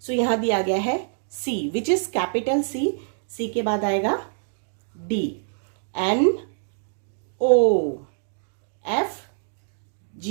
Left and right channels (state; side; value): silent; left; digital silence